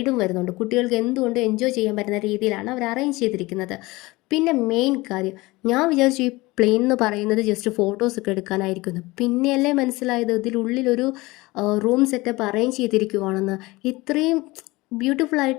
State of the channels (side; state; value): right; quieter; 21.5 dB